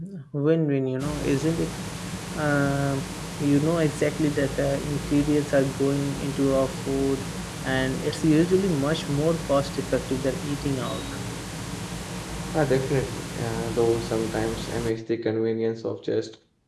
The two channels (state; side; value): identical; both; correlation 1.00